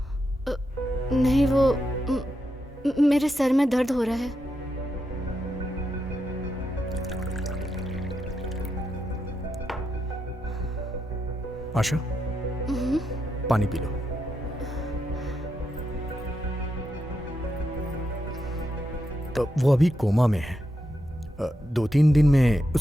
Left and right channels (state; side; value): normal; both; correlation 0.84